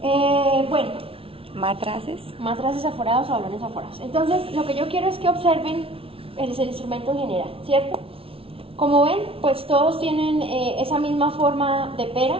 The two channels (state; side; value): late; left; 0.26 ms